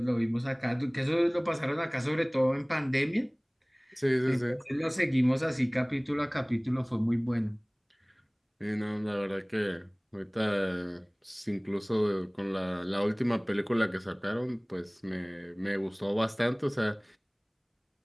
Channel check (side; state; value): both; identical; correlation 1.00